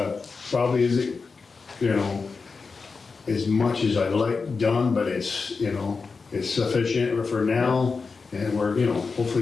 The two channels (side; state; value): right; quieter; 4.6 dB